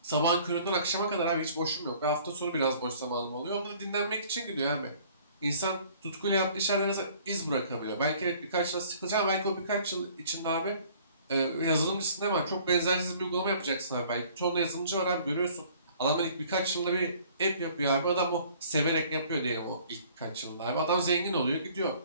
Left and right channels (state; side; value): inverted; both; correlation -0.54